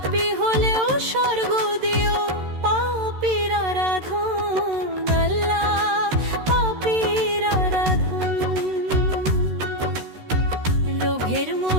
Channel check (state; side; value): late; left; 13 ms